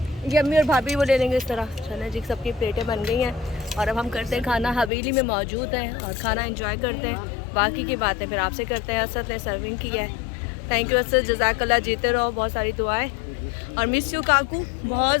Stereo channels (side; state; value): right; drops out; at 4.9 s